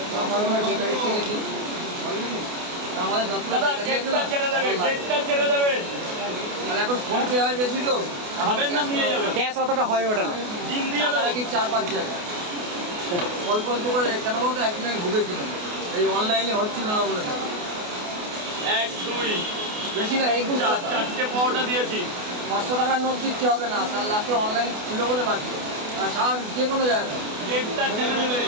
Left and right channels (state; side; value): late; left; 28 ms